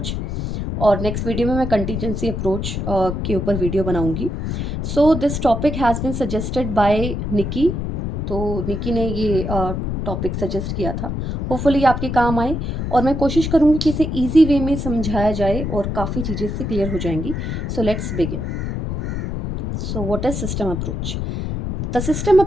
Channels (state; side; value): noise; left; rumble, 3 dB below the sound